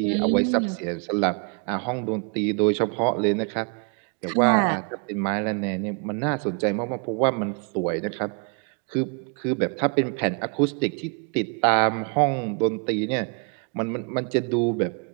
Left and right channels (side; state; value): left; quieter; 37.3 dB